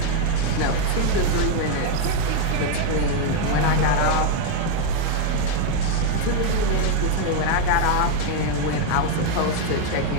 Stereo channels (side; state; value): both; different; correlation 0.00